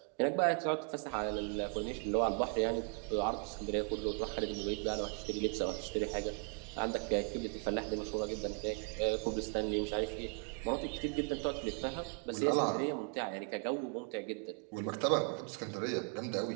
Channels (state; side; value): quieter; left; 35.9 dB